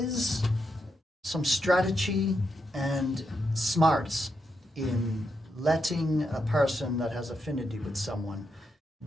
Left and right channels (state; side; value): normal; both; correlation 0.83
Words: some strategy and smarts in letting a person that has affinity with someone